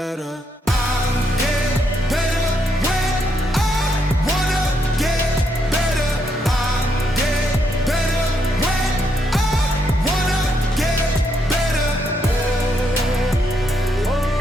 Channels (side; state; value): both; normal; correlation 0.77